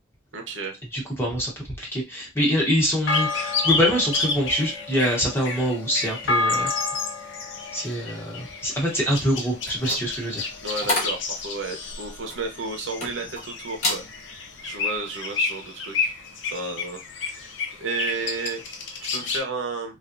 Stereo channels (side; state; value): both; normal; correlation 0.31